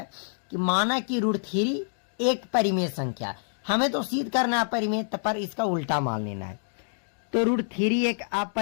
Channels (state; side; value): silent; right; digital silence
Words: कि माना कि √3 एक परिमेय संख्या, हमें तो सिद्ध करना है अपरिमेय, पर इसका उल्टा मान लेना है। तो √3 एक